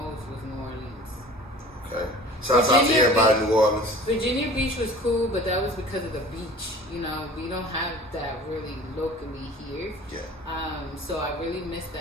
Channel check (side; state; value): both; normal; correlation 0.43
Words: was New Orleans. Okay. Shout out to everybody in New Orleans. Virginia Beach was cool, but that was because of the beach. You know, we don't have that really locally here. Yeah. So I really missed